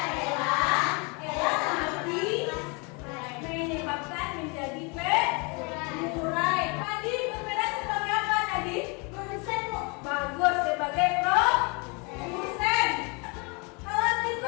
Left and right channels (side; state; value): right; quieter; 31.3 dB